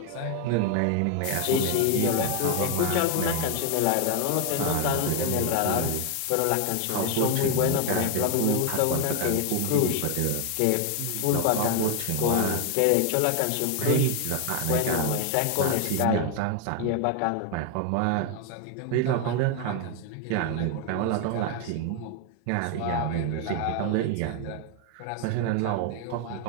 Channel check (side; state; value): both; different; correlation 0.01